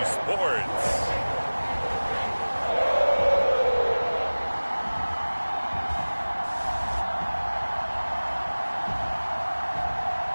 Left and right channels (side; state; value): both; inverted; correlation -1.00